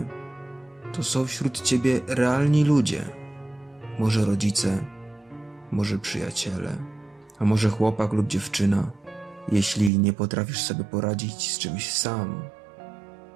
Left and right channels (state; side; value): drops out; left; at 9.9 s